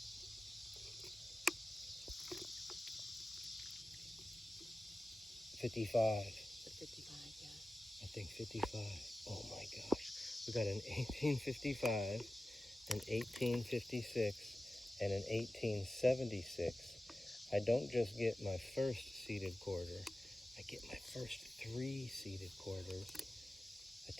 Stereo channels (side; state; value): both; normal; correlation 0.95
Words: 55. 55, yeah. I think 55. Oh my gosh. We got an 1855, an 1856, and an 1876. I don't just get my first seeded quarter. I get my first 3 seeded quarters. I